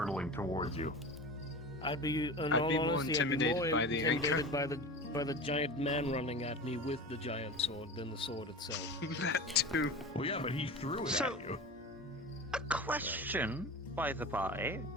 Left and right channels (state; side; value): normal; both; correlation 0.31